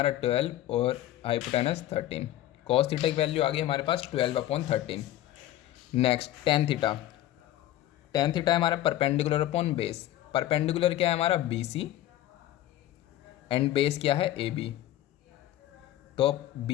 12 और हाइपोटेनस 13। कॉस थीटा की वैल्यू आ गई हमारे पास 12/13। Next tan theta. Tan theta है हमारा परपेंडिकुलर अपॉन बेस। परपेंडिकुलर क्या है हमारा बी सी एंड बेस क्या है ए बी। तो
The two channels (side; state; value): right; quieter; 13.6 dB